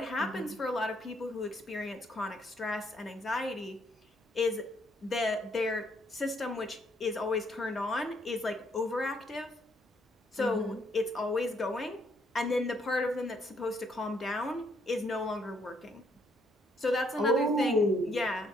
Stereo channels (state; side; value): normal; both; correlation 0.70